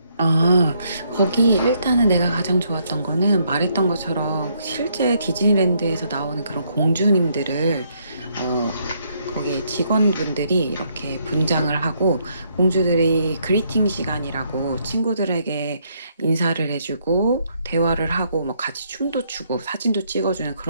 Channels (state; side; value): inverted; both; correlation -0.72